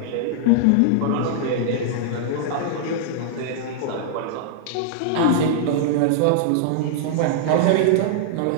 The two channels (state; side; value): different; both; correlation -0.01